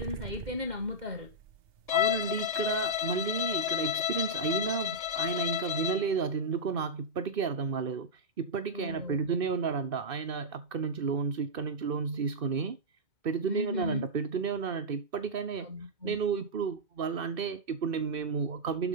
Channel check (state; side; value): late; left; 2.6 ms